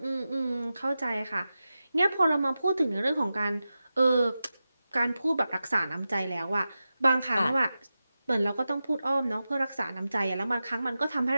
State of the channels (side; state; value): both; inverted; correlation -0.93